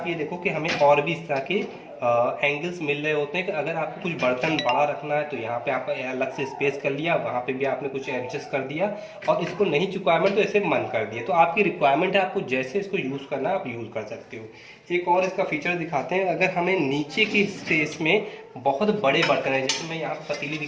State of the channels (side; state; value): both; identical; correlation 1.00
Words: ये देखो कि हमें और भी इस तरह के एंगल्स मिल रहे होते हैं कि अगर आपको कुछ बर्तन बड़ा रखना है तो यहाँ पे आप अलग से स्पेस कर लिया, वहाँ पे भी आपने कुछ एडजस्ट कर दिया, और इसको नहीं रिक्वायरमेंट तो ऐसे मन कर दिया। तो आपकी रिक्वायरमेंट है, आपको जैसे इसको यूज़ करना है आप यूज़ कर सकते हो। एक और इसका फीचर दिखाते हैं, अगर हमें नीचे की स्पेस में बहुत बड़े बर्तन है, जैसे मैं यहाँ पर पतीली